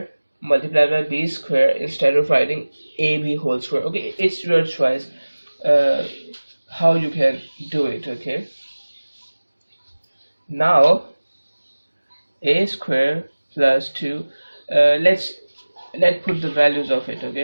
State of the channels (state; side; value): inverted; both; correlation -1.00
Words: multiplied by b square instead of writing ab whole square, okay. It's your choice how you can do it, okay. Now a square plus 2, let's put the values of it,